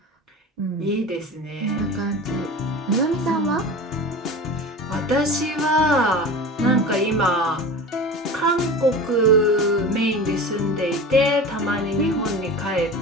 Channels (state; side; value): normal; both; correlation 0.32